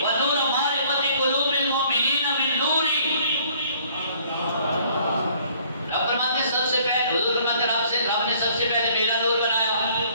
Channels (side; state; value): both; inverted; correlation -0.59